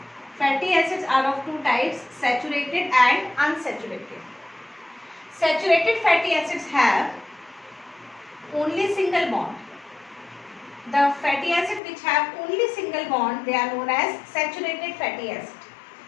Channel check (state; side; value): drops out; right; at 11.8 s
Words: Fatty acids are of 2 types, saturated and unsaturated. Saturated fatty acids have only single bond. The fatty acid which have only single bond, they are known as saturated fatty acid.